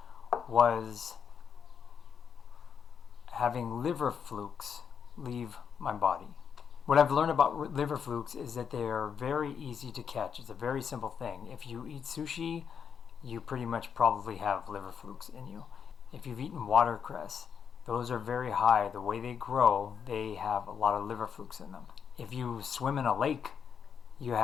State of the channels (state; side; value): quieter; right; 7.2 dB